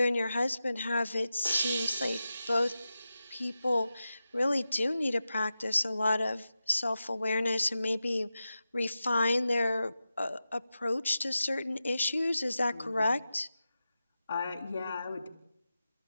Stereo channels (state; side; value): inverted; both; correlation -0.92